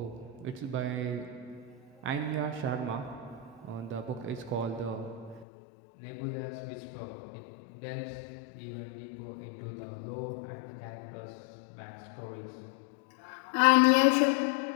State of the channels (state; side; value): drops out; right; at 5.5 s